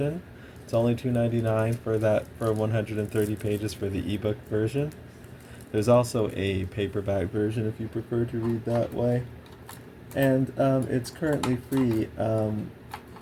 It's only $2.99 for 130 pages for the ebook version. There's also a paperback version if you prefer to read that way. And it's currently free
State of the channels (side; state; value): both; identical; correlation 1.00